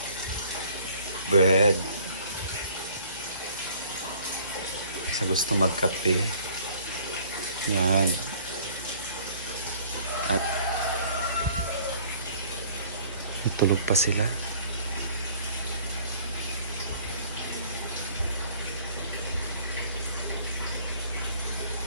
bread. Sa gusto magkape. Yan. At tulog pa sila.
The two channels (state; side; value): inverted; both; correlation -0.55